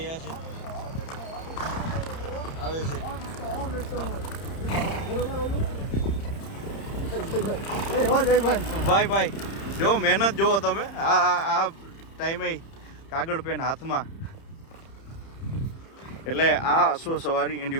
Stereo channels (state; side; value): late; right; 30 ms